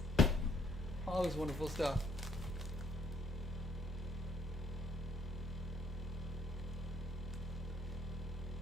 All this wonderful stuff.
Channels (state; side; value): normal; both; correlation 0.67